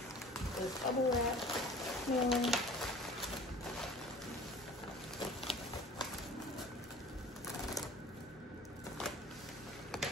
this bubble wrap mailer.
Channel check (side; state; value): both; normal; correlation 0.45